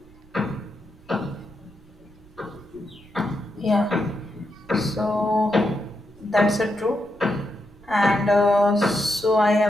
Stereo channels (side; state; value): right; noise; rumble, 25 dB below the sound